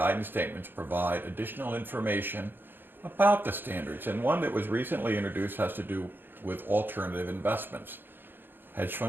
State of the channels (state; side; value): late; left; 0.097 ms